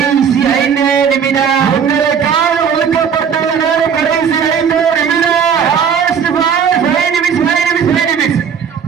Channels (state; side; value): quieter; left; 7.2 dB